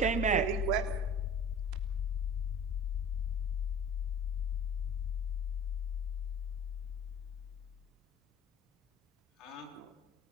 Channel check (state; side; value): normal; both; correlation 0.42